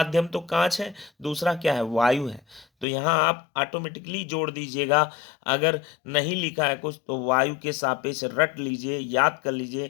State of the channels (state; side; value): drops out; right; at 2.9 s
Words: तो कांच है, दूसरा क्या है, वायु है। तो यहाँ आप ऑटोमेटिकली जोड़ दीजिएगा। अगर नहीं लिखा है कुछ तो वायु के सापेक्ष रट लीजिए, याद कर